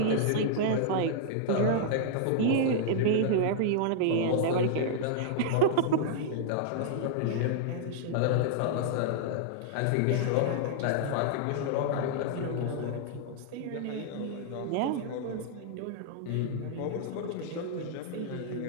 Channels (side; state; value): both; different; correlation -0.01